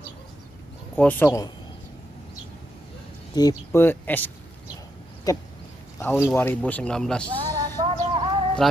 tipe Escape tahun 2019,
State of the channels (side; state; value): both; normal; correlation 0.82